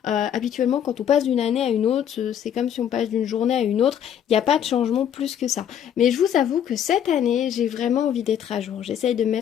Habituellement, quand on passe d'une année à une autre, c'est comme si on passe d'une journée à une autre. Il n'y a pas de changement plus que ça. Mais je vous avoue que cette année, j'ai vraiment envie d'être à jour. J'essaye de me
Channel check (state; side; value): quieter; right; 9.4 dB